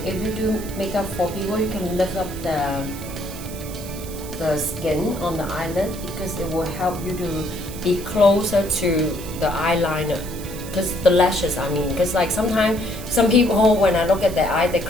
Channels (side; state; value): right; noise; hiss, 14 dB below the sound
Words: if you do makeup for people, you can lift up the skin on the eyelid, because it will help you to be closer to the eyeliner, because the lashes, I mean, because like sometimes some people, when I look at their eye, they